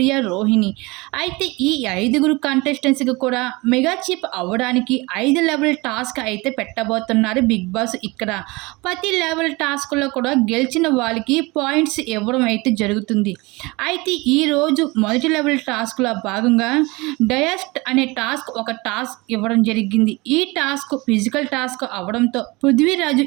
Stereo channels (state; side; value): quieter; left; 24.1 dB